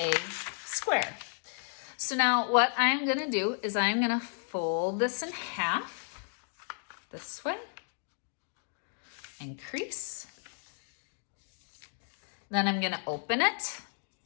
square. So now what I'm gonna do is I'm gonna fold this in half this way and crease. Then I'm gonna open it.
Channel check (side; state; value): right; silent; 56 dB below the other